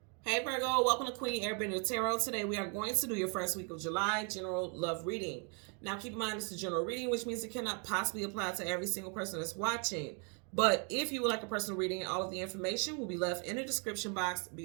Hey Virgo, welcome to Queen Airbender Tarot. Today we are going to do your first week of July general love reading. Now keep in mind it's a general reading, which means it cannot possibly apply to every single person that's watching. But if you would like a personal reading, all of the information will be left in the description box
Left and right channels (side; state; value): left; quieter; 37.5 dB